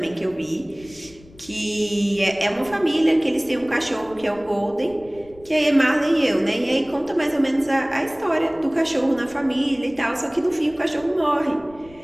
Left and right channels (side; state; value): left; noise; rumble, 24 dB below the sound